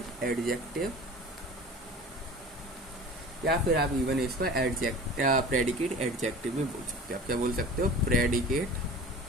या फिर आप इवन इसको प्रेडिकेट एडजेक्टिव भी बोल सकते हो। आप क्या बोल सकते हो?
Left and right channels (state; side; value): normal; both; correlation 0.39